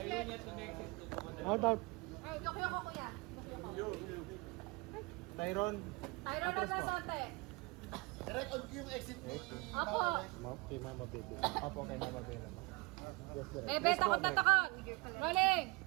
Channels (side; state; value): left; quieter; 26.2 dB